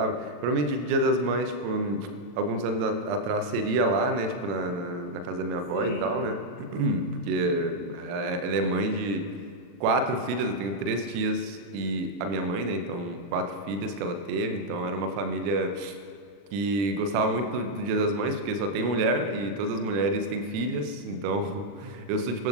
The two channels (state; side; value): late; left; 40 ms